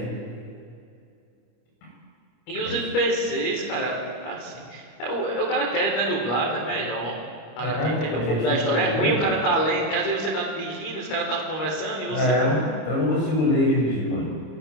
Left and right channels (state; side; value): late; right; 26 ms